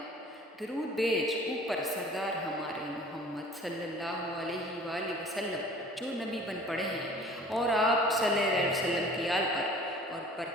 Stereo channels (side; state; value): both; normal; correlation 0.48